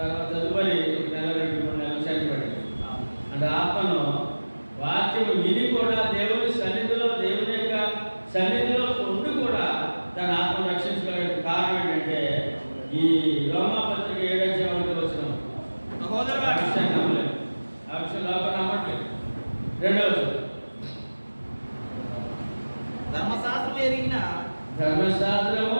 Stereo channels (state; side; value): inverted; both; correlation -1.00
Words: తదుపరి 1 నెల 2-3 నెలలు చనిపోయాడు. అంటే ఆత్మను వాక్యం విని కూడా దేవుని సన్నిధిలో, దేవుని యొక్క సన్నిధిలో ఉండి కూడా తన ఆత్మను రక్షించగలిగిన కారణం ఏంటంటే ఈ రోమాపత్రిక 7వ అధ్యాయంలో వచ్చిన సహోదరులారా, ఆ విషయం నమ్మలేదు, ఆ విషయం లోపల నమ్మట్లేదు. 2వ ధర్మశాస్త్రము